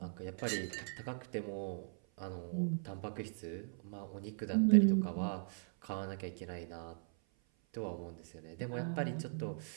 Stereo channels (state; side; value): silent; left; 52 dB below the other